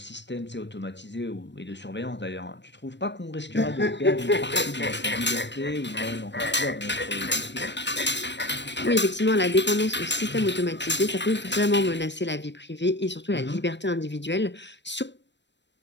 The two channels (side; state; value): right; late; 0.52 ms